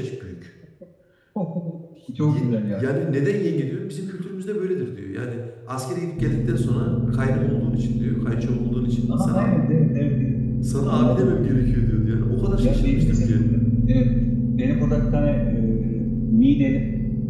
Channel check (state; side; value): identical; both; correlation 1.00